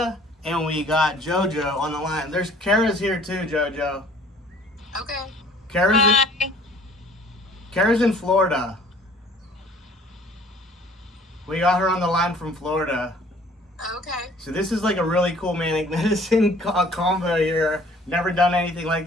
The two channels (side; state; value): both; normal; correlation 0.54